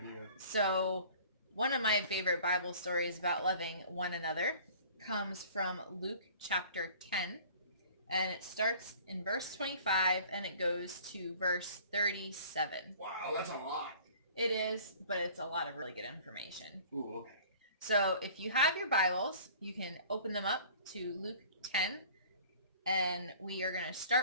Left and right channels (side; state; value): both; inverted; correlation -0.48